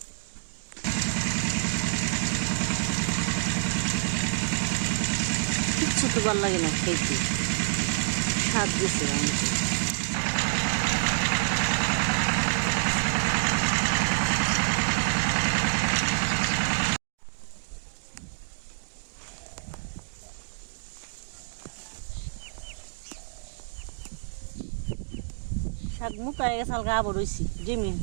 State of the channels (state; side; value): silent; left; digital silence